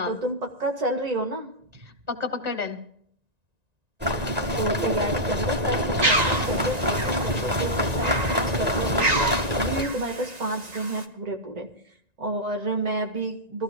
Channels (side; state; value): left; late; 1.9 ms